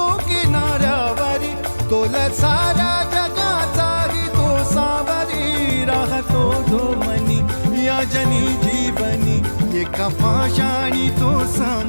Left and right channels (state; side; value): inverted; both; correlation -1.00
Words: किनाऱ्यावरी तोला सारा जगाचाही तो सावरी राहतो तो मनी या जनी जीवनी एका पाशाणी तो